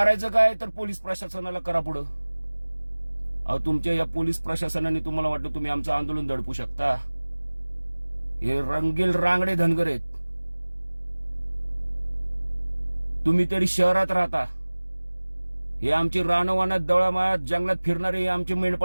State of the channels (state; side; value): inverted; both; correlation -1.00